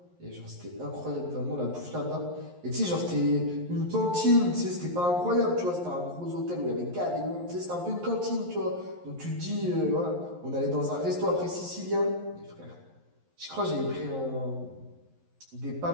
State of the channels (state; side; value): late; left; 11 ms